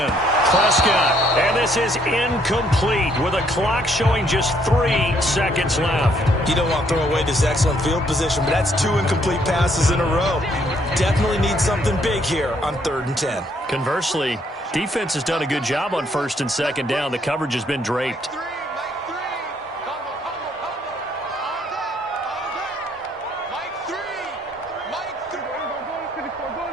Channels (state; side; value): normal; both; correlation 0.68